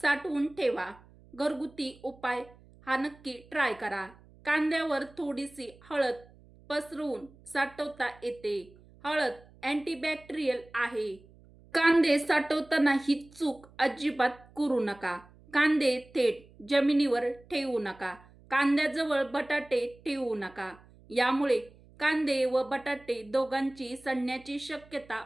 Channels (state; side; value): noise; right; hum, 25 dB below the sound